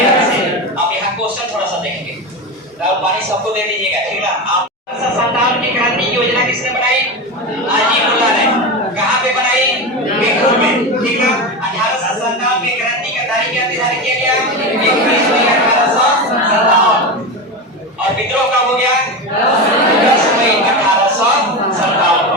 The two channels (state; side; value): normal; both; correlation 0.20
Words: से। अब यहाँ क्वेश्चन थोड़ा सा देखेंगे, पानी सबको दे दीजिएगा, ठीक ना। 1857 की क्रांति की योजना किसने बनाई? अजीमुल्ला ने। कहाँ पे बनाई? पीठूर में, ठीक ना। 1857 की क्रांति का तारीख क्या निर्धारित किया गया? 21 मई 1857। और विद्रोह कब हो गया? 10 मई 1857